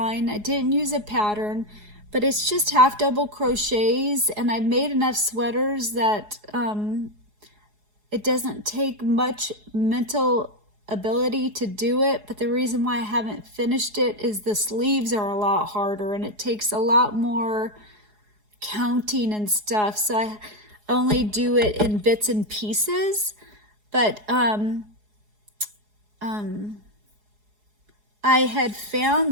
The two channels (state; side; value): late; left; 4.8 ms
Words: I didn't use a pattern, but it's just half double crochets, and I've made enough sweaters that it doesn't take much mental ability to do it. But the reason why I haven't finished it is the sleeves are a lot harder, and it takes a lot more counting and stuff, so I only do it in bits and pieces. But I had